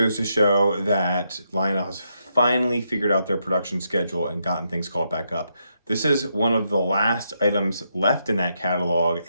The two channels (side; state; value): both; inverted; correlation -0.80